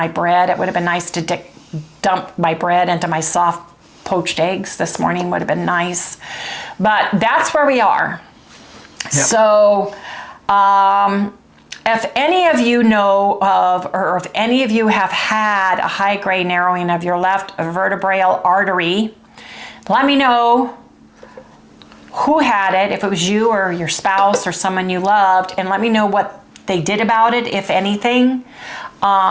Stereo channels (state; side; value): identical; both; correlation 1.00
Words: bread. It would have been nice to dump my bread into my soft poached eggs this morning. Would have been nice. But that's where we are. Yep. So if any of you know of, or if any of you have had a high-grade narrowing of your left vertebral artery, let me know who had it, if it was you or your spouse or someone you loved, and let me know what they did about it, if anything,